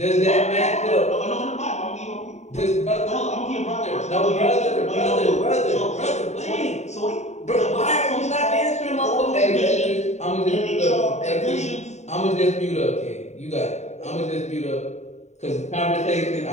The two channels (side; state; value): right; late; 0.33 ms